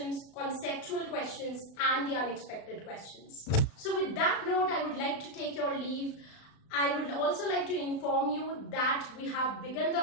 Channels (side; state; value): right; late; 36 ms